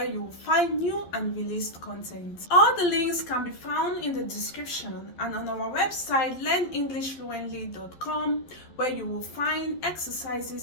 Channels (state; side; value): late; right; 12 ms